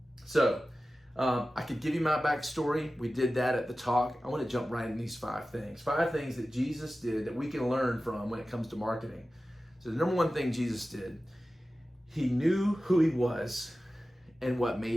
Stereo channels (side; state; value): both; normal; correlation 0.95